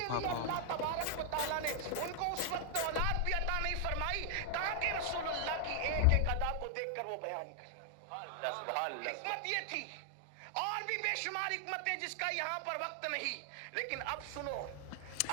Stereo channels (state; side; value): different; both; correlation 0.00